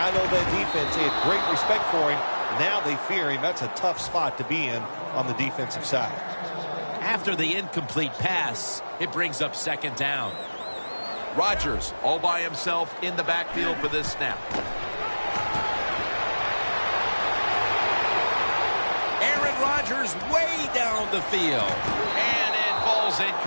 know that defense, they had great respect for him. Now they fear him. That's a tough spot to be in on the defensive side. After the incomplete pass, it brings up second down. Rodgers all by himself in the backfield for this snap. Aaron Rodgers way down the field. And it falls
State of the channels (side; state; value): both; inverted; correlation -1.00